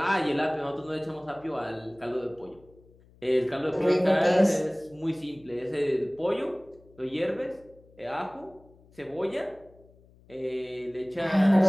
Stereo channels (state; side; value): noise; left; hum, 27 dB below the sound